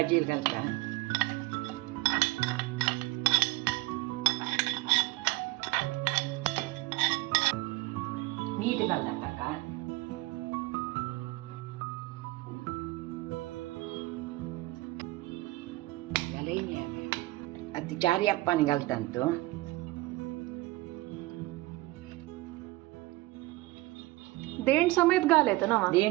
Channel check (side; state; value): left; quieter; 20.0 dB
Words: घालता मीठ घालता ताका आता 4 यप्पाने घालता तो देंट समेत घाल येतं ना